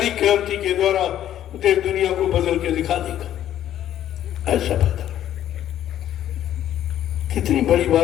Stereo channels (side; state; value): right; quieter; 11.5 dB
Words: क्रांति के द्वारा देश दुनिया को बदल के दिखा देगा। ऐसा बता कितनी बड़ी